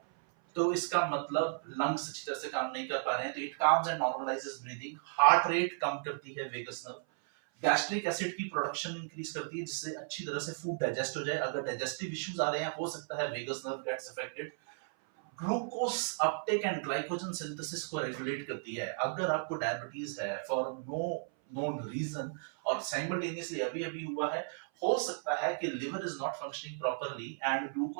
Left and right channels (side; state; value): left; silent; 55 dB below the other